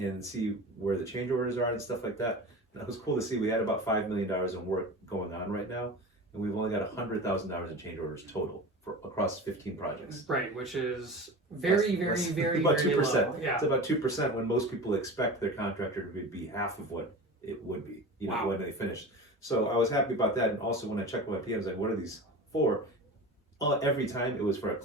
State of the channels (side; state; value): both; normal; correlation 0.32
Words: see where the change orders are and stuff like that. And it was cool to see we had about $5 million in work going on right now, and we've only got $100,000 in change orders total for across 15 projects. Right, which is very about very 2%. low. Yeah. It's about 2% when most people expect their contractor to be half of what it would be, when they finish. So I was happy about that, and also when I checked my PMs, like, what are these for? Every time it was for a